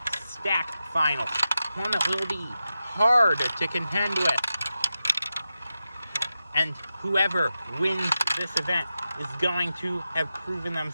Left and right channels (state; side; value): inverted; both; correlation -0.91